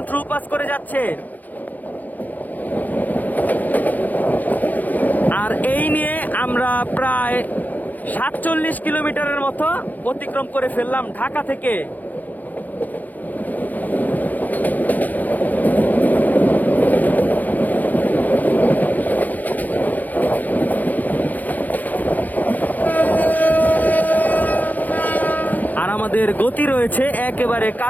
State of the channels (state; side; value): late; right; 0.082 ms